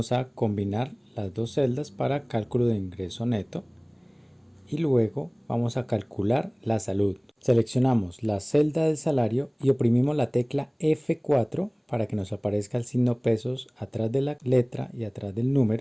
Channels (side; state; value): both; identical; correlation 1.00